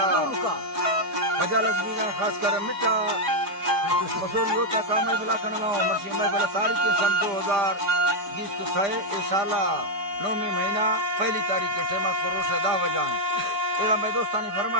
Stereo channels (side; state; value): left; late; 5.0 ms